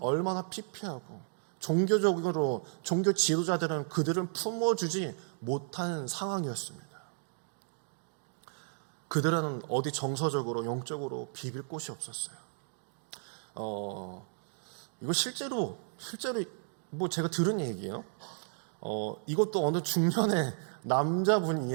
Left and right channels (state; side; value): silent; left; digital silence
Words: 피폐하고 종교적으로 종교 지도자들은 그들은 품어주지 못한 상황이었습니다. 그들은 어디 정서적으로 영적으로 비빌 곳이 없었어요. 이거 실제로 뭐 제가 들은 얘기예요. 이것도 어느 중년의 남자분